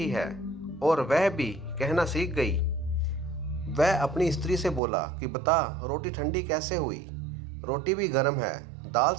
है, और वह भी कहना सीख गई। वह अपनी स्त्री से बोला कि बता, रोटी ठंडी कैसे हुई? रोटी भी गर्म है, दाल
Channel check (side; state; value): left; drops out; at 4.8 s